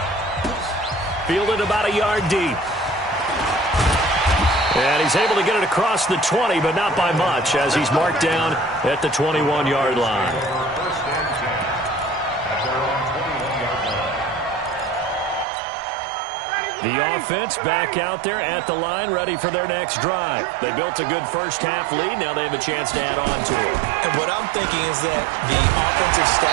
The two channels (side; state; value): left; drops out; at 15.5 s